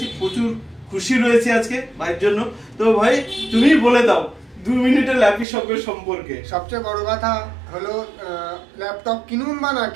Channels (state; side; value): drops out; left; at 5.5 s